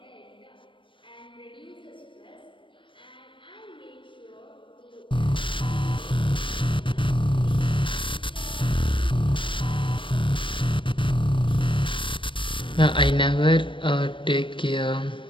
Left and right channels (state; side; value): late; right; 0.25 ms